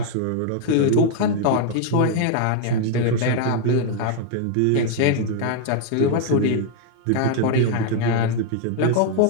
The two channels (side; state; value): both; different; correlation 0.00